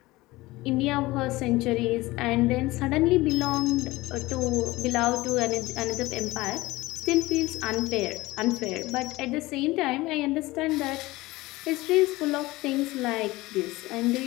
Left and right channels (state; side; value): quieter; right; 19.8 dB